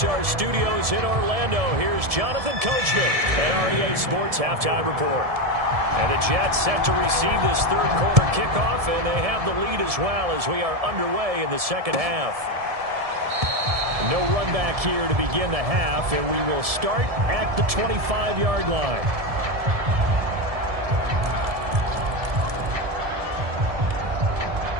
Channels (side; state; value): left; late; 1.7 ms